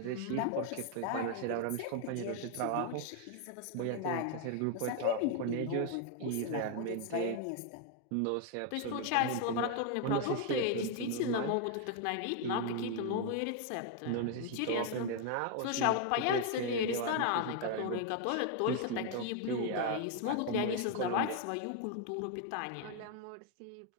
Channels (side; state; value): both; different; correlation 0.01